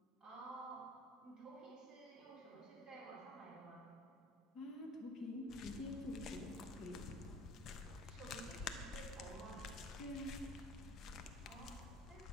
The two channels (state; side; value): normal; both; correlation 0.47